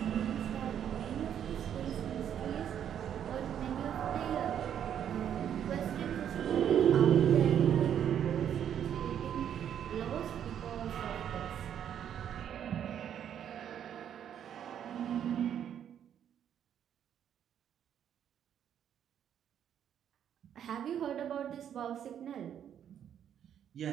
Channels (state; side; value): quieter; left; 9.4 dB